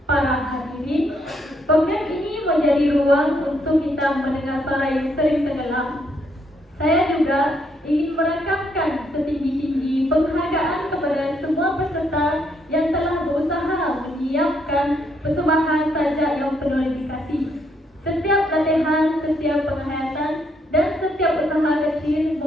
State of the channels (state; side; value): normal; both; correlation 0.73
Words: Para hadirin, program ini menjadi ruang untuk kita mendengar suara yang sering tenggelam. Saya juga ingin merakamkan setinggi-tinggi penghargaan kepada semua peserta yang telah berusaha menyiapkan persembahan sajak yang penuh dedikasi. Setiap latihan, setiap penghayatan, dan setiap usaha kecil